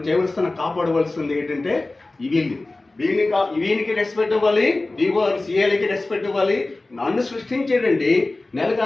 చేయవలసిన కాపాడవలసింది ఏంటంటే వీనికి రెస్పెక్ట్ ఇవ్వాలి, డిఓ సిఎల్ఐకి రెస్పెక్ట్ ఇవ్వాలి. నన్ను సృష్టించేటండి నెలకు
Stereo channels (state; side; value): quieter; right; 3.0 dB